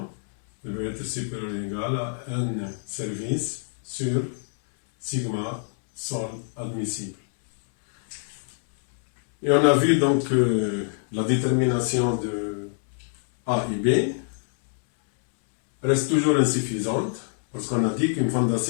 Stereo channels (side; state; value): right; silent; 62 dB below the other